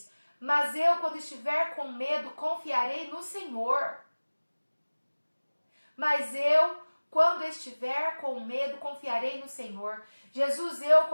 Mas eu, quando estiver com medo, confiarei no Senhor. Mas eu, quando estiver com medo, confiarei no Senhor. Jesus, eu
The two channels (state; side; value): inverted; both; correlation -1.00